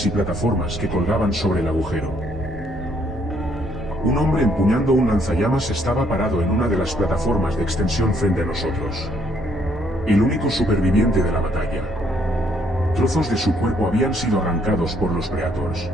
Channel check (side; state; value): both; normal; correlation 0.68